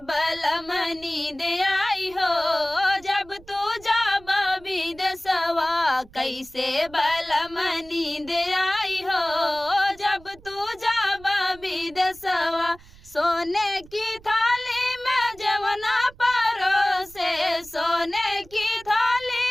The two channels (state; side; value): noise; right; rumble, 23 dB below the sound